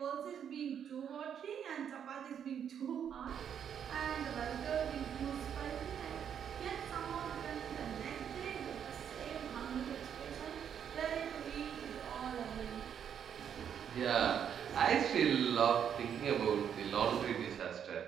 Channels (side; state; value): left; quieter; 8.5 dB